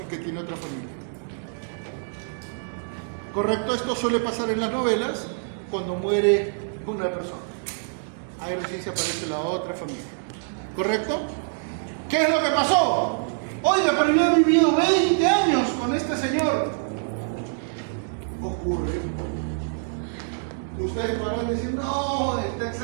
y que tiene otra familia. ¿Correcto? Esto suele pasar en las novelas cuando muere una persona. Ahí recién se aparece la otra familia. ¿Correcto? ¿Qué es lo que pasó? Oiga, pero yo he vivido 20 años con este señor. Ocurre. Ustedes podrán decir, no, está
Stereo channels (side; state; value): left; silent; digital silence